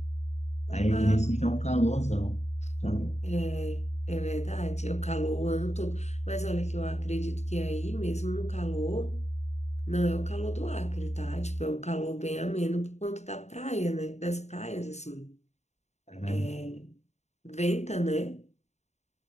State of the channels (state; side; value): late; right; 0.33 ms